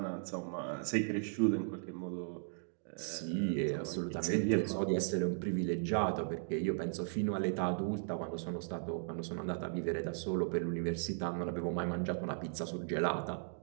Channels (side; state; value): left; silent; digital silence